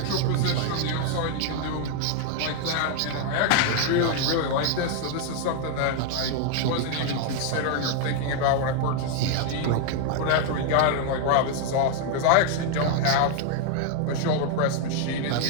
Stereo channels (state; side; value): different; both; correlation 0.00